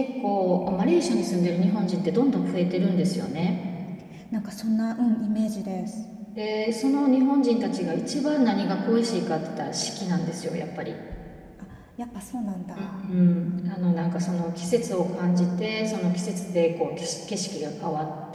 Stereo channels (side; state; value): both; identical; correlation 1.00